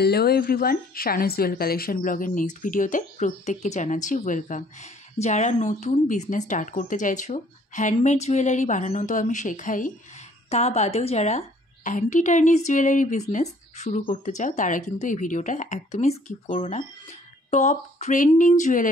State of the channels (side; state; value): both; normal; correlation 0.59